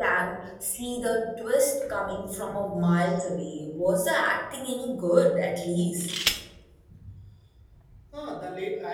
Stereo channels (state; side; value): identical; both; correlation 1.00